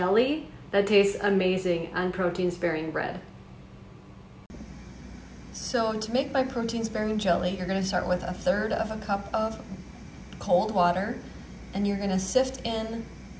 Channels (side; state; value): both; identical; correlation 1.00